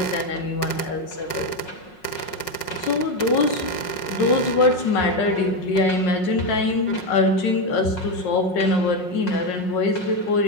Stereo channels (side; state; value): right; late; 5.5 ms